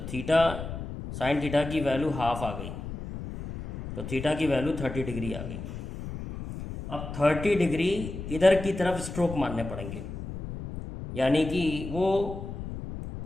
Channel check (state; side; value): noise; left; rumble, 8 dB below the sound